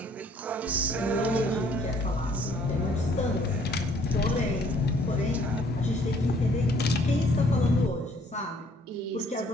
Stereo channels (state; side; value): normal; both; correlation 0.60